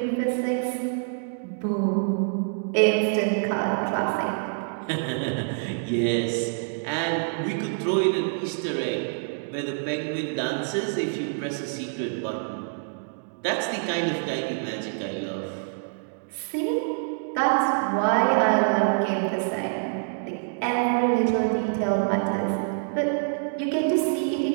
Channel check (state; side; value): silent; left; digital silence